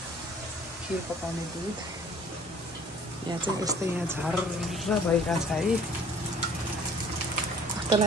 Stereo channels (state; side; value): normal; both; correlation 0.52